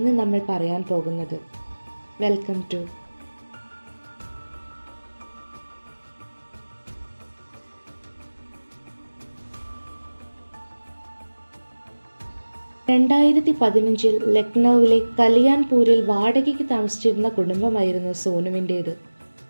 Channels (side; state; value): both; inverted; correlation -1.00